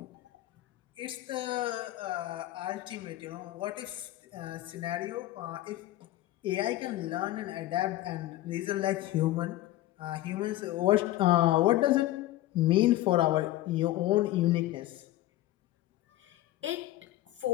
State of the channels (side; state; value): right; quieter; 15.6 dB